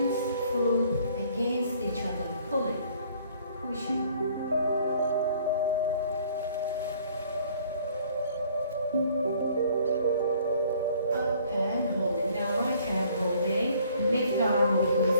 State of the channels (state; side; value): inverted; both; correlation -0.58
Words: foot against each other. Pulling, pushing. Up and holding. Now right hand holding. Left arm open